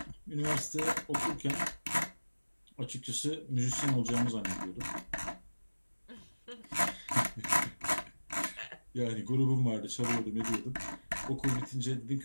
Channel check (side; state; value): both; inverted; correlation -1.00